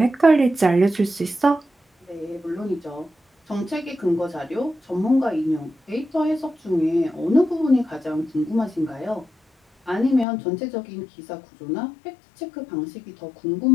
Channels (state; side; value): drops out; right; at 10.2 s